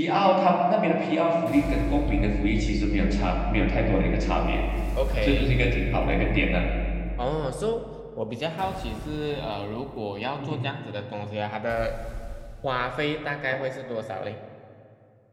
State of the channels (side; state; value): both; identical; correlation 1.00